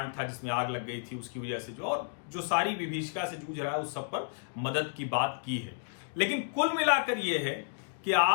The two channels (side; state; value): right; silent; digital silence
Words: था जिसमें आग लग गई थी उसकी वजह से जो सारी विभीषिका से जूझ रहा है उस सब पर मदद की बात की है। लेकिन कुल मिलाकर यह है कि